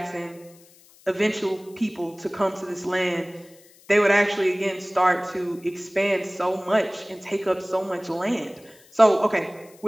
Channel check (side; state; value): left; noise; hiss, 26 dB below the sound